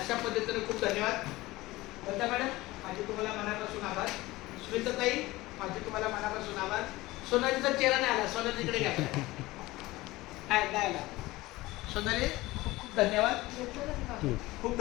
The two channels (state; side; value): quieter; right; 19.3 dB